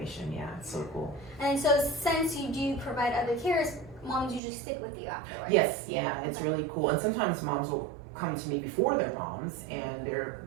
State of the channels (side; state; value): left; drops out; at 4.4 s